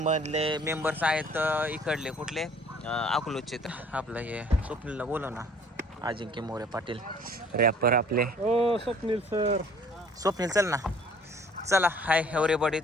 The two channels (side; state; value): both; normal; correlation 0.54